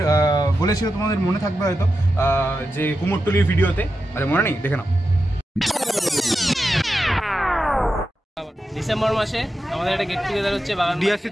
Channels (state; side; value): normal; both; correlation 0.90